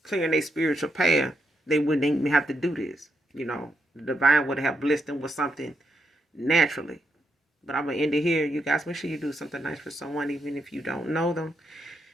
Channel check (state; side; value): normal; both; correlation 0.80